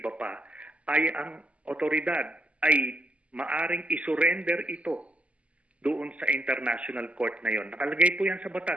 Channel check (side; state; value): left; late; 0.065 ms